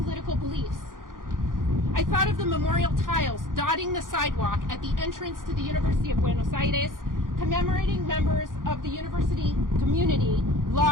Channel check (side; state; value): left; late; 0.90 ms